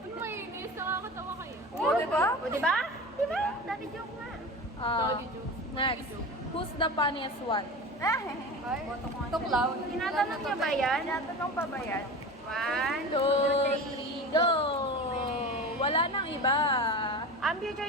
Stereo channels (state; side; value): normal; both; correlation 0.31